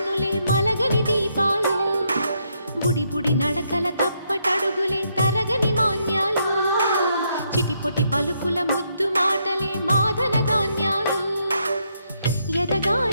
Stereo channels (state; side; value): inverted; both; correlation -0.76